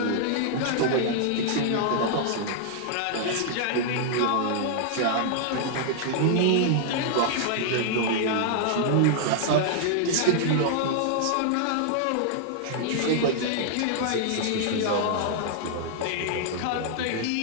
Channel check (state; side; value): different; both; correlation -0.01